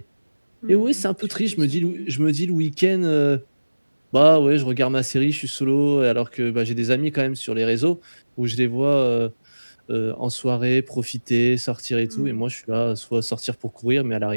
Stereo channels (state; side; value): inverted; both; correlation -1.00